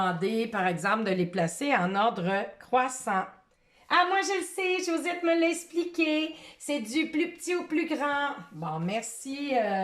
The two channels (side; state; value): both; identical; correlation 1.00